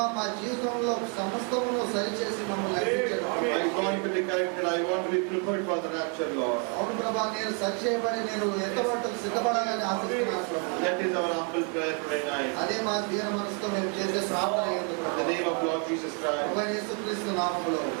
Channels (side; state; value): left; quieter; 38.5 dB